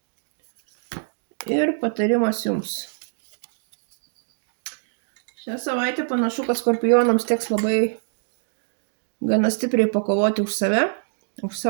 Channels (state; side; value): silent; left; digital silence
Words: ir patarimas jums. Šią savaitę panašu, kad Skorpionams teks labai gana stipriai pakovoti už save, už